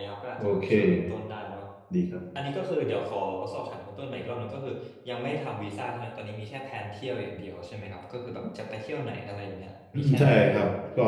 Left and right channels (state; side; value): identical; both; correlation 1.00